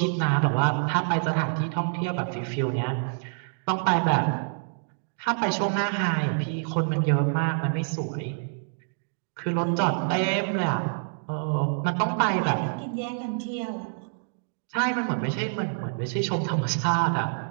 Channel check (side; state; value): left; silent; digital silence